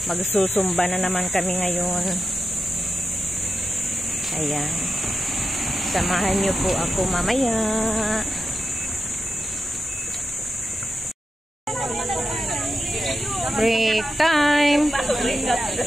Magsusumba na naman kami ngayon. Ayan. Samahan niyo po ako mamaya. Break time.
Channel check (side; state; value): both; normal; correlation 0.90